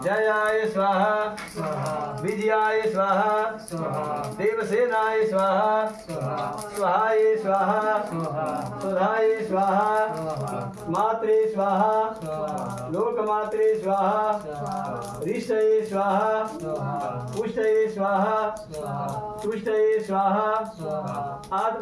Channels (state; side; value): identical; both; correlation 1.00